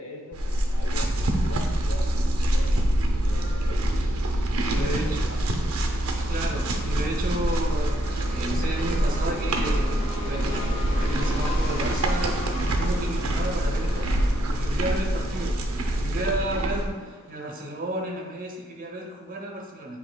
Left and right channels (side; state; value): both; normal; correlation 0.77